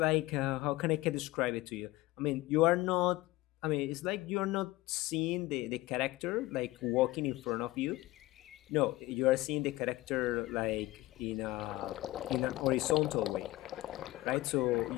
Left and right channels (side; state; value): right; quieter; 18.7 dB